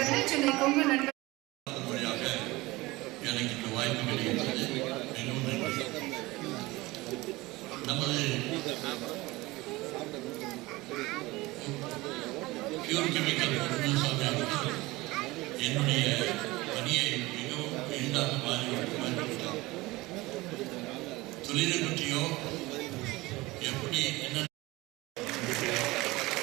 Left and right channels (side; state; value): left; quieter; 20.8 dB